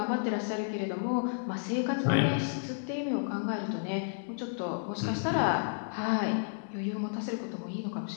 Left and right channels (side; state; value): right; silent; digital silence